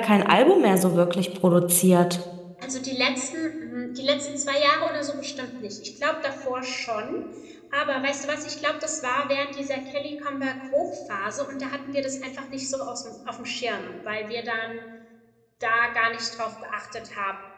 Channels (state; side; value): identical; both; correlation 1.00